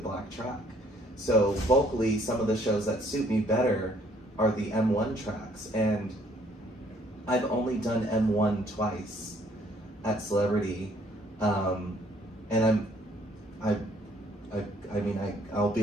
track. So vocally, some of the shows that suit me better are the M1 tracks, and I've only done M1 twice at Celebrity, and I'll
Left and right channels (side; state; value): both; normal; correlation 0.63